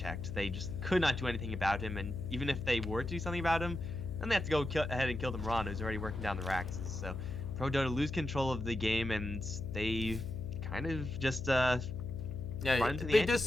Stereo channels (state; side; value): noise; left; hum, 7 dB below the sound